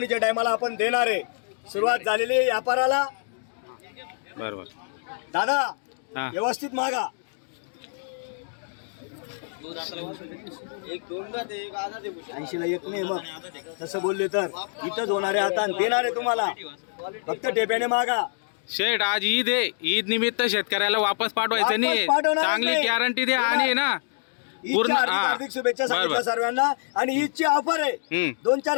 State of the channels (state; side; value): silent; right; digital silence